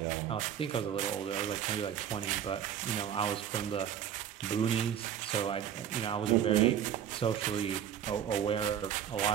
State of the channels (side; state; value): left; quieter; 9.5 dB